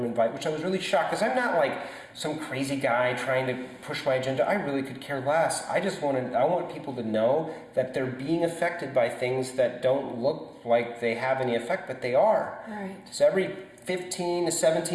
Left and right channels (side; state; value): both; identical; correlation 1.00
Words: invite, which I was really shocked, because I'm not like some crazy guy trying to push my agenda. I really could care less. I want people to know that they're being affected by things that don't look like they have any effect, but they are. Right. So every 15 to